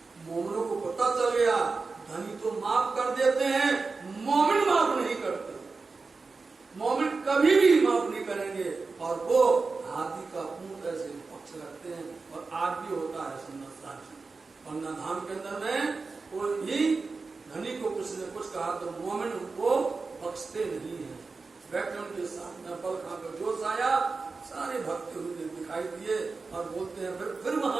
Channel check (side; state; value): left; quieter; 4.2 dB